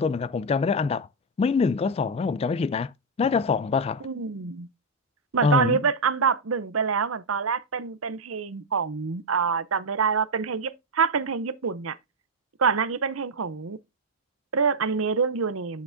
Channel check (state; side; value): normal; both; correlation 0.00